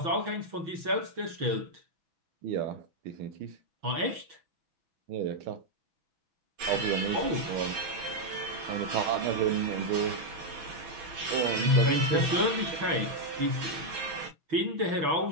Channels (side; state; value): left; late; 6.1 ms